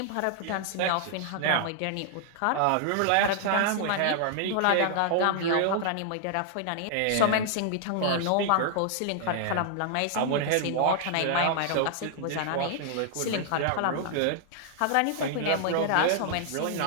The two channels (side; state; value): both; different; correlation 0.00